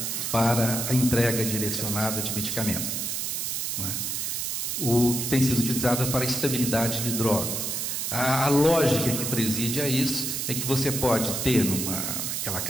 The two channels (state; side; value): noise; right; hiss, 2 dB below the sound